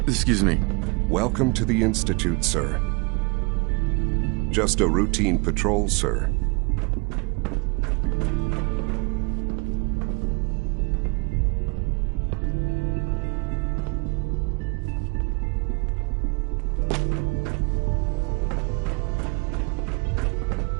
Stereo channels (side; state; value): left; quieter; 29.1 dB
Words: Excuse me. Welcome to the Institute, sir. Just a routine patrol, sir.